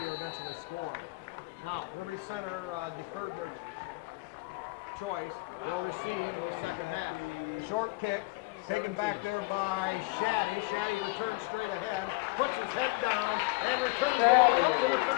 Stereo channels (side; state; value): right; quieter; 24.5 dB